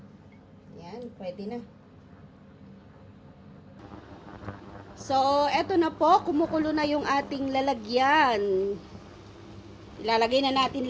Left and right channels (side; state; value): both; identical; correlation 1.00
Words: Pwede na. So, eto na po. Kumukulo na yung ating lalagyan. Ilalagay na natin